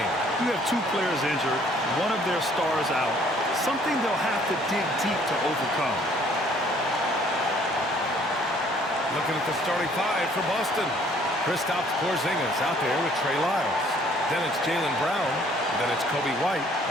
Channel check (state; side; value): normal; both; correlation 0.60